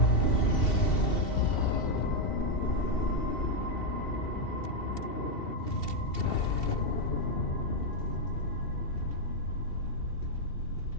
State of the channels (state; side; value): late; right; 2.7 ms